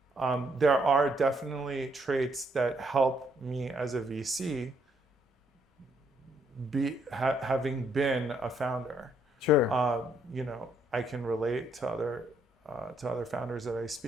there are definitely traits that help me as a VC having been a founder. Sure. I can relate to other founders that I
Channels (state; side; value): normal; both; correlation 0.71